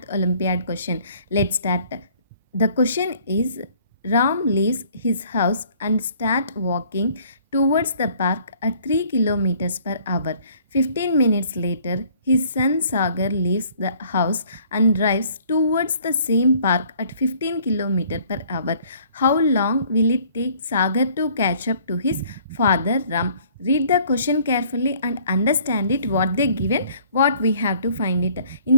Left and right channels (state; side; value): inverted; both; correlation -0.57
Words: Olympiad question. Let's start. The question is Ram leaves his house and start walking towards the park at 3 kilometers per hour. 15 minutes later, his son Sagar leaves the house and drives towards the same park at 15 kilometers per hour. How long will it take Sagar to catch up to his father Ram? Read the question carefully and understand it what they given, what we have to find it. In